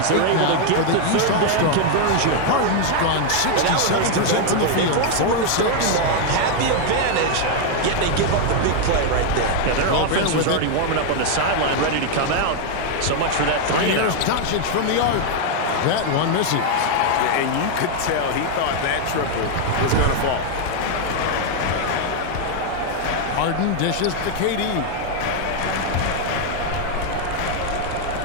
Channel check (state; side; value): different; both; correlation 0.00